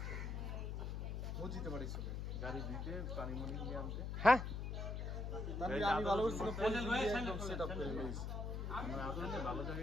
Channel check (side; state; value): left; noise; hum, 3 dB below the sound